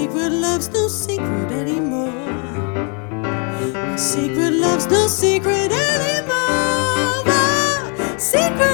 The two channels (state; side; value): quieter; right; 38.0 dB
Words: love's no secret anymore. My secret love's no secret anymore. My